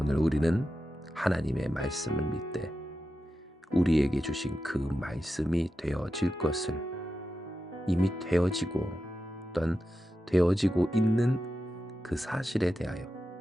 우리는 하나님의 말씀을 믿되 우리에게 주신 그 말씀이 되어질 것을 이미 되어지고 또한 되어지고 있는 그 사실에 대하여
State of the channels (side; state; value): both; normal; correlation 0.90